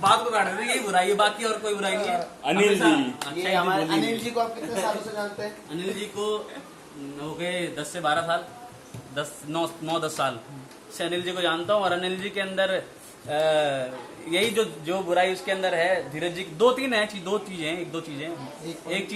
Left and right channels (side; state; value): both; identical; correlation 1.00